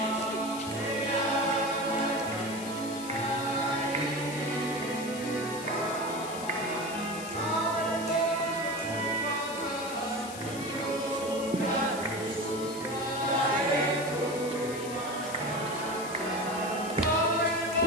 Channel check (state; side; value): noise; left; hiss, 12 dB below the sound